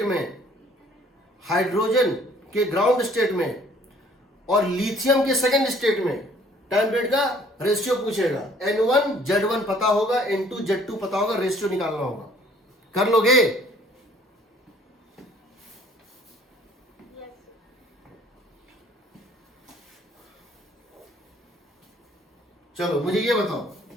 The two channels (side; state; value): both; normal; correlation 0.58